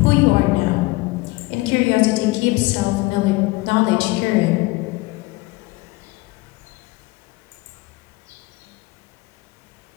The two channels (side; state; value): right; quieter; 21.7 dB